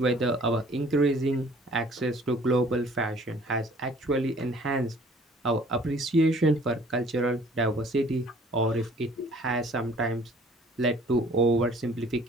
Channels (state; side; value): normal; both; correlation 0.54